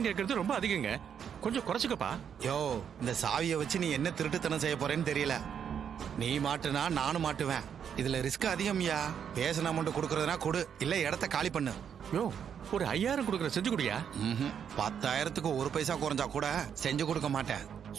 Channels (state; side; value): quieter; left; 8.0 dB